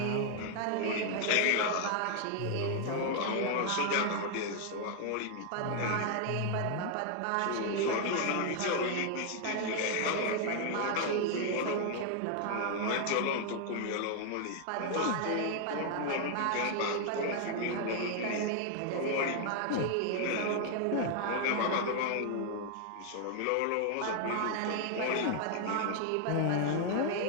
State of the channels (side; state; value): both; different; correlation 0.00